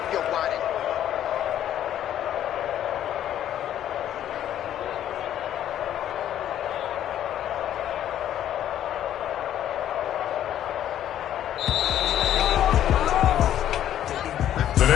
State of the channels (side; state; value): right; quieter; 11.2 dB